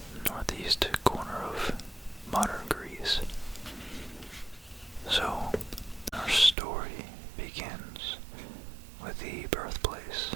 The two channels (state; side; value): drops out; left; at 6.6 s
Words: northeast corner of modern Greece. So, our story begins with the birthplace